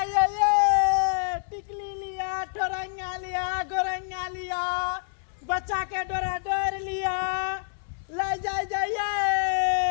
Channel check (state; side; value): silent; right; 60 dB below the other